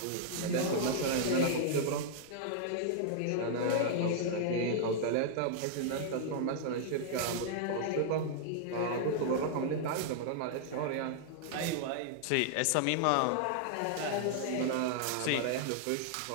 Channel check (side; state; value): both; different; correlation -0.01